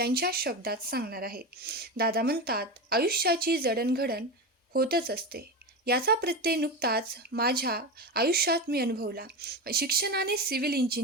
शब्दात सांगणार आहे. दादा म्हणतात, आयुष्याची जडणघडण होतच असते. याचा प्रत्यय नुकताच माझ्या आयुष्यात मी अनुभवला. शिक्षणाने सिव्हिल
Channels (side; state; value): both; normal; correlation 0.20